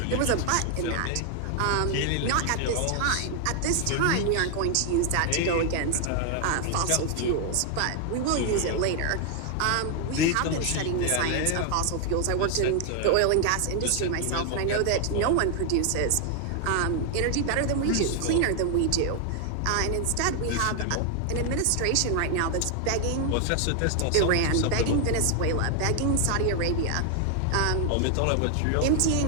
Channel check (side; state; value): both; different; correlation 0.00